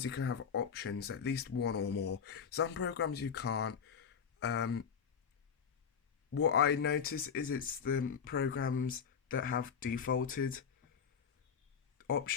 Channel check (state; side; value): quieter; right; 7.0 dB